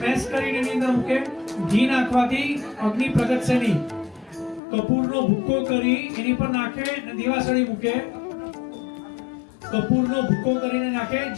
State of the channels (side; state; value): right; drops out; at 4.6 s